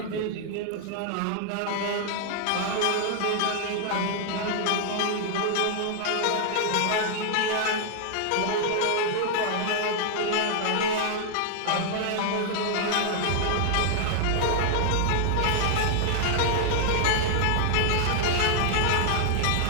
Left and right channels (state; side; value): different; both; correlation 0.00